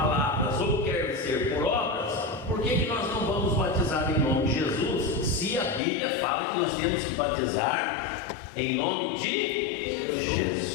ou quer ser por obras, por que nós não vamos batizar em nome de Jesus, se a Bíblia fala que nós temos que batizar em nome de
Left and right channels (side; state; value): right; drops out; at 5.8 s